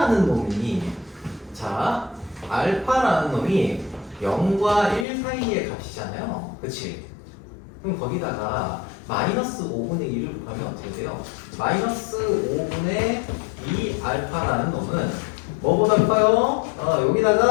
놈이 자 알파라는 놈이 0과 1 사이의 값이잖아요. 그치? 그럼 거기다가 마이너스 5분의 1을 곱하면 어떻게 돼요? 마이너스 5분의 2 알파라는 놈은 뭐보다 커요?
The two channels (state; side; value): drops out; right; at 5.1 s